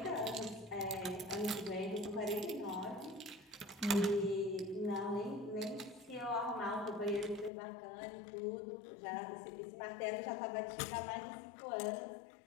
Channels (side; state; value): right; drops out; at 7.5 s